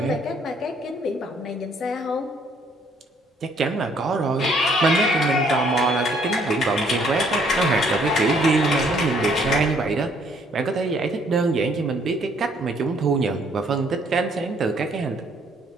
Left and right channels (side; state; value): both; normal; correlation 0.64